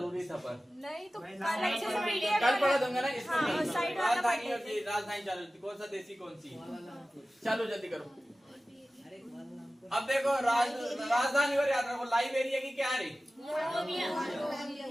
था, पर नहीं तो कल पढ़ा दूंगा ना। इसको राजधानी और राजधानी चालू, कौन सा देसी कौन सी? चलो जल्दी करो। अब देखो राजधानी और याद रखो। लाइबेरिया की क्या है?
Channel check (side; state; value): both; normal; correlation 0.96